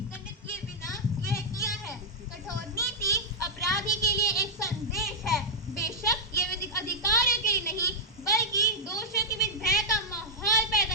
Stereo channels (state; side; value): normal; both; correlation -0.05